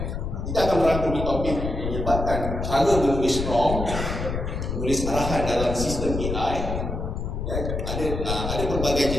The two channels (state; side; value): noise; left; rumble, 4 dB below the sound